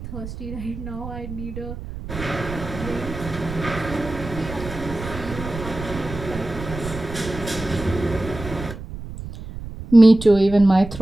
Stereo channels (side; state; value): right; noise; rumble, 10 dB below the sound